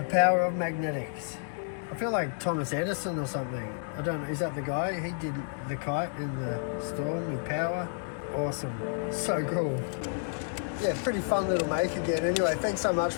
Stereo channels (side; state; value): right; silent; digital silence